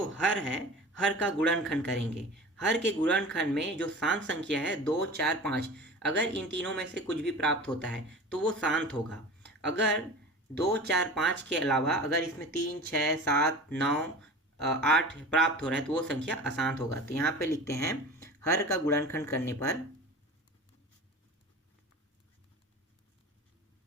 हर है, हर का गुणनखंड करेंगे। हर के गुणनखंड में जो शांत संख्या है 2 4 5, अगर इन तीनों में से कुछ भी प्राप्त होता है तो वो शांत होगा। अगर 2 4 5 के अलावा अगर इसमें 3 6 7 9 8 प्राप्त हो रहा है तो वो संख्या अशांत होगा। तो यहाँ पे लिखते हैं हर का गुणनखंड करने पर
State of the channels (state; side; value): normal; both; correlation 0.36